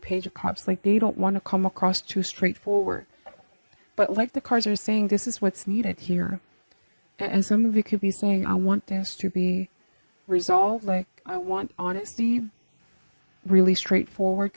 of Cups. Like, they don't want to come across too straightforward. But like the cards are saying, this is what's needed here. And some of you could be saying, I want this to be resolved. Like, I want honesty, really straightforward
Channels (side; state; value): both; inverted; correlation -1.00